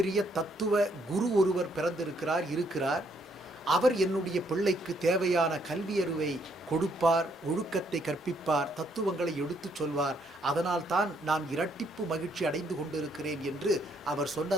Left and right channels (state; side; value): normal; both; correlation 0.70